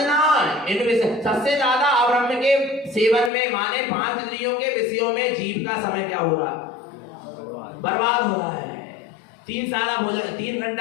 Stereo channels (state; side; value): drops out; right; at 3.3 s